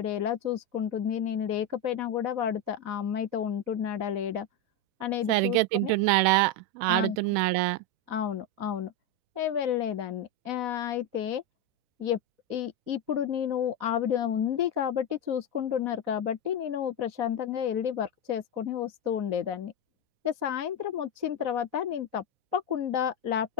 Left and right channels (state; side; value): late; left; 4.0 ms